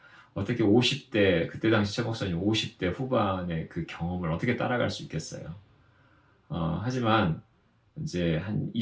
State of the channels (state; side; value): identical; both; correlation 1.00